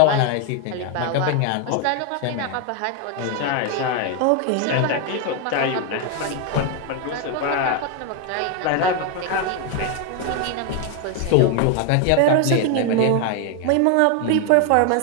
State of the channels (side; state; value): both; different; correlation 0.01